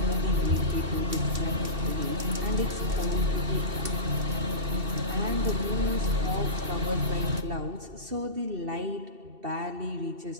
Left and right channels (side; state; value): left; late; 2.7 ms